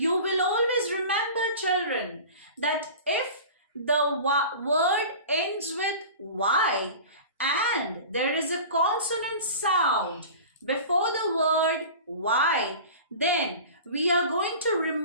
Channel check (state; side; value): inverted; both; correlation -0.37